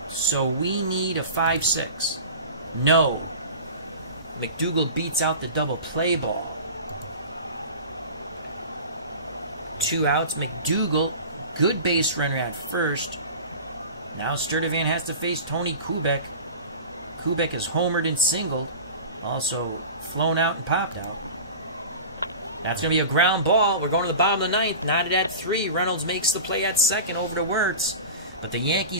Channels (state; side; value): inverted; both; correlation -0.34